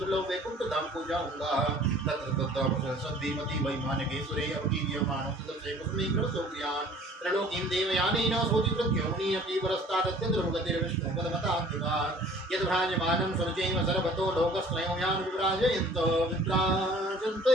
वैकुंठ धाम को जाऊंगा। तत्र वैमान के सुरे त्रिलोकीं देवयानेन सोतिवृत्योनि अपि परस्तादत्यद्रुवगतिर्विष्णुपदमतान्तिकान् यद्भ्राजमानं सुरचैव सर्वतो लोकस्त्रयोयान् विभ्राजन्त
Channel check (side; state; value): both; normal; correlation 0.51